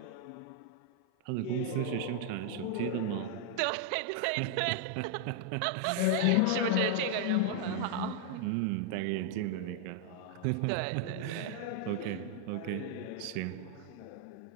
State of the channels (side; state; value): both; different; correlation 0.00